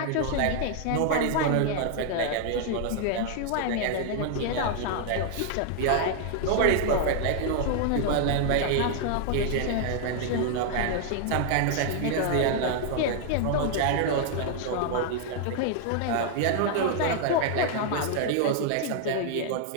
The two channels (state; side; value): different; both; correlation 0.00